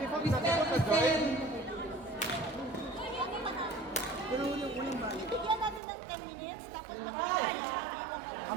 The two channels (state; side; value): drops out; left; at 5.8 s